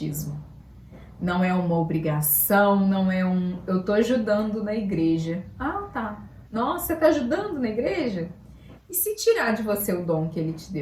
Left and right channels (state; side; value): identical; both; correlation 1.00